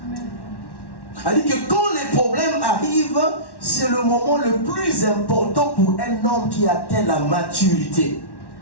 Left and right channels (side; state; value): right; late; 1.1 ms